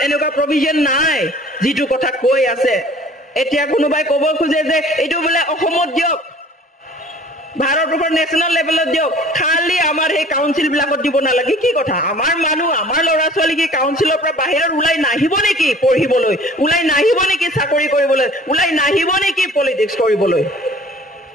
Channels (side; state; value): both; normal; correlation 0.49